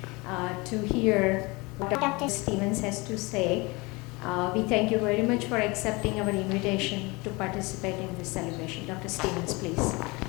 to hear what Dr. Stevens has to say. We thank you very much for accepting our invitation to participate in this celebration. Dr. Stevens, please.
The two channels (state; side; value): quieter; right; 25.4 dB